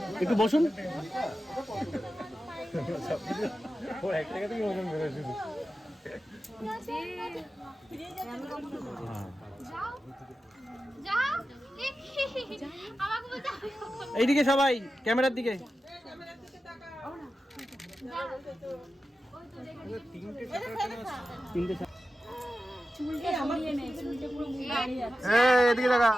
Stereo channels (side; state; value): both; normal; correlation 0.92